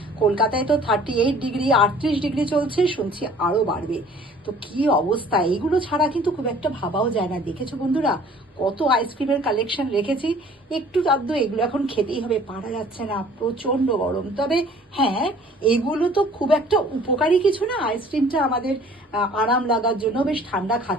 কলকাতায় তো 38 ডিগ্রি 38 ডিগ্রি চলছে, শুনছি আরো বাড়বে। তো কি অবস্থা, এইগুলো ছাড়া কিন্তু খুব একটা ভাবাও যায় না। দেখেছো বন্ধুরা, কত আইসক্রিমের কালেকশন রেখেছি। একটু আধটু এগুলো এখন খেতেই হবে, পারা যাচ্ছে না, প্রচন্ড গরম। তবে হ্যাঁ, এগুলো তো খুব একটা উপকারী কিছু না। আইসক্রিমটা আমাদের আরাম লাগার জন্য, বেশ ঠান্ডা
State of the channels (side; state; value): both; normal; correlation 0.52